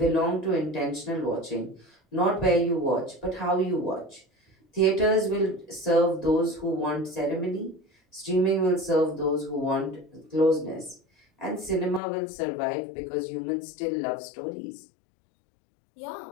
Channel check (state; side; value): drops out; right; at 12.0 s